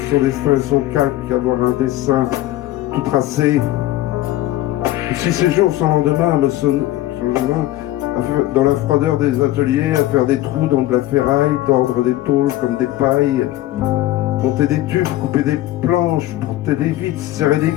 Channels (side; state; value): right; quieter; 15.4 dB